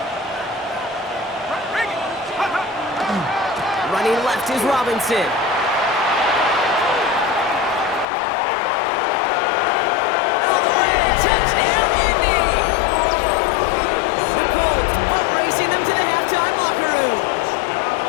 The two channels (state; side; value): drops out; right; at 8.1 s